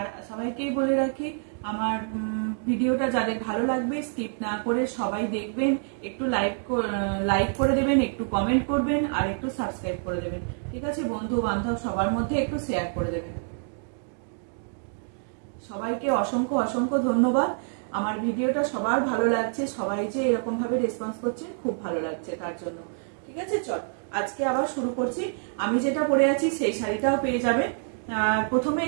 সবাইকেই বলে রাখি, আমার ভিডিওটা যাদের ভালো লাগবে স্কিপ না করে সবাই দেখবেন, একটু লাইক করে দেবেন, একটু কমেন্ট করবেন, আর একটু সাবস্ক্রাইব করে দেবেন। ঠিক আছে, বন্ধু বান্ধব সবার মধ্যে একটু শেয়ার করে দেবেন। সবাইকে অসংখ্য অসংখ্য ধন্যবাদ। আমার ভিডিওটা সবার ভালো লাগছে, সবাই যে এরকম ভাবে রেসপন্স করছে খুব ভালো লাগছে তার জন্য। ঠিক আছে, চল আজকে আবার শুরু করছি। আমি যেটা পরে আছি সেই শাড়িটাও পেয়ে যাবে। প্রথমে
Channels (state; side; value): silent; left; digital silence